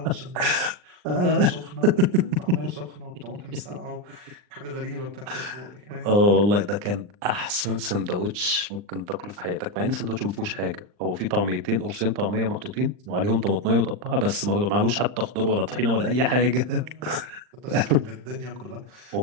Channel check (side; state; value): left; late; 39 ms